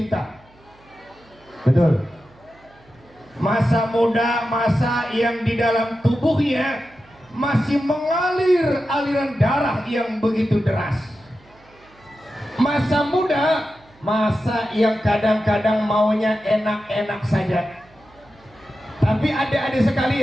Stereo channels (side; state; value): right; noise; hum, 29 dB below the sound